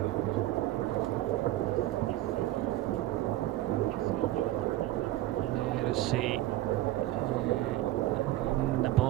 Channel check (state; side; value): quieter; left; 15.5 dB